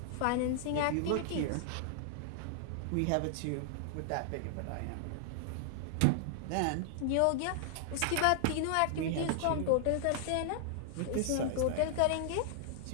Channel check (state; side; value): different; both; correlation -0.01